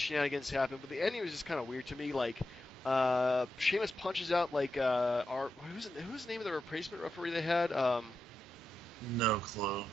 happen, but the ending was just kind of weird to me. Like, Sheamus punches out like who's the name of the replacement referee they had? No clue.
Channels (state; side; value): normal; both; correlation 0.88